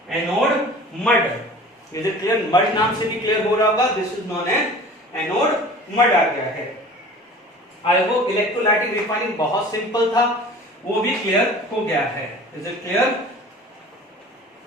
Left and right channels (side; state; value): both; normal; correlation 0.43